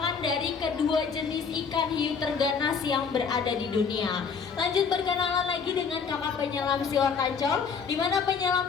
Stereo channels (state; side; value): quieter; right; 5.9 dB